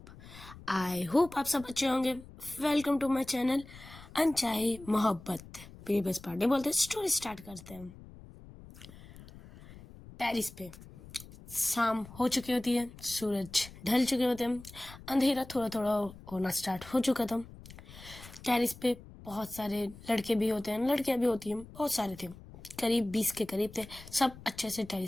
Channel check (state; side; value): noise; left; rumble, 18 dB below the sound